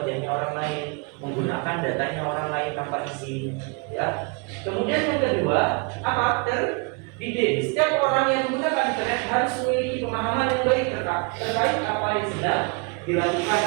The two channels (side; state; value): left; quieter; 32.2 dB